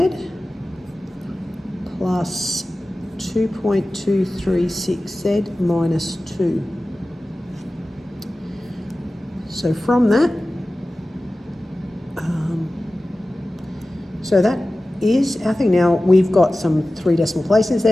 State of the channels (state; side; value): normal; both; correlation 0.96